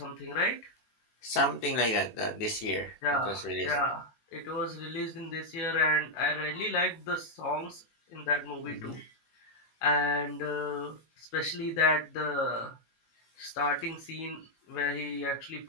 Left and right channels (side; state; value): right; late; 18 ms